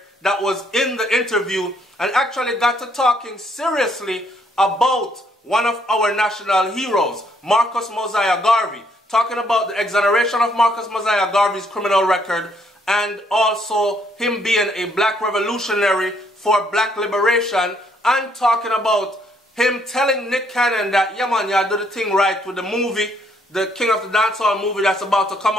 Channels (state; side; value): normal; both; correlation 0.69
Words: that was in the interview and actually got to talking seriously about one of our national heroes, Marcus Mosiah Garvey, talking about the exoneration of Marcus Mosiah Garvey's criminal record and also him being a black revolutionary for black liberation, and talking about him telling Nick Cannon that, yeah man, you do the thing right with the movie, the King of the Dancehall movie that's about to come